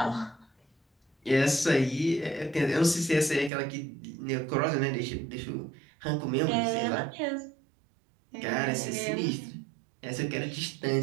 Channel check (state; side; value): drops out; left; at 3.5 s